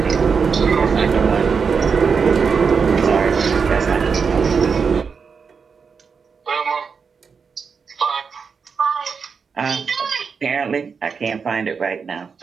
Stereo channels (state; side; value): quieter; left; 5.7 dB